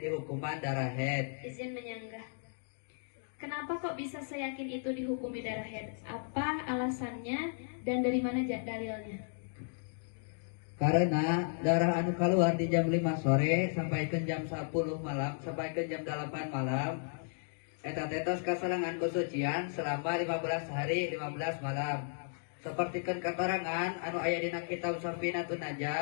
hukuman darah haid. Izin menyanggah. Kenapa kok bisa seyakin itu dihukumi darah haid? Apa alasannya dan dari mana dalilnya? Karena darah anu keluar di jam 5 sore sampai ke jam 10 malam sampai ke jam 8 malam eta tetos kasarangan kesucian selama 15 hari 15 malam. Sapertikeun katerangan anu aya dina kitab Safinatun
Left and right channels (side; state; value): right; silent; digital silence